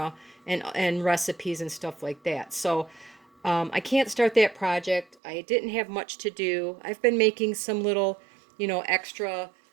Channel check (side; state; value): left; drops out; at 5.2 s